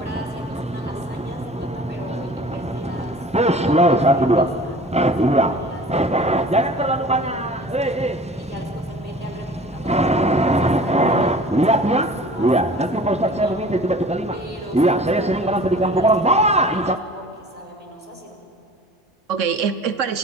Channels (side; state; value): both; normal; correlation 0.44